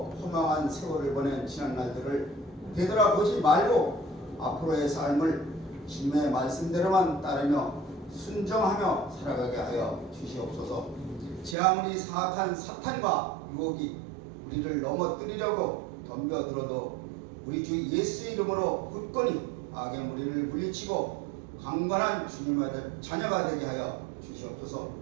허망한 세월을 보낸 지난 날들을 되돌아보지 말고 앞으로의 삶을 주님의 말씀대로만 따르며 순종하며 살아가게 하여 주시옵소서. 제 아무리 사악한 사탄과 유혹이 우리를 넘어뜨리려고 덤벼들어도 우리 주 예수의 이름으로 굳건히 악의 무리를 물리치고 강건한 주님의 자녀가 되게 하여 주시옵소서.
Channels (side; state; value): left; drops out; at 11.6 s